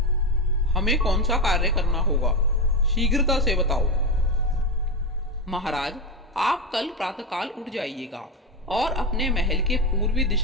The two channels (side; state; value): both; normal; correlation 0.13